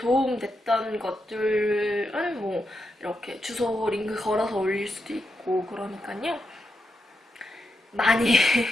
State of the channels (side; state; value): both; normal; correlation 0.85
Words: 것들은 뭐 이렇게 주소 링크 걸어서 올릴 수도 있고 그러니까요. 많이